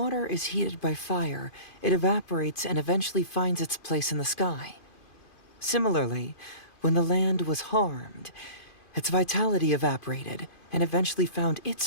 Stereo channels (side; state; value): right; late; 2.5 ms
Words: is heated by fire, it evaporates and eventually finds its place in the sky. Similarly, when the land was harmed, its vitality evaporated and eventually found